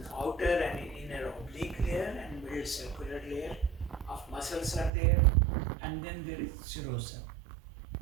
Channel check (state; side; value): drops out; left; at 4.9 s